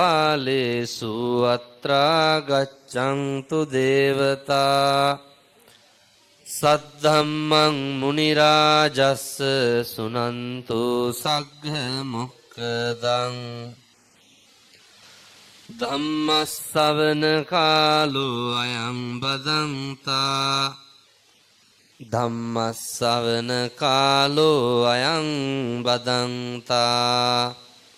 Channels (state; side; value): identical; both; correlation 1.00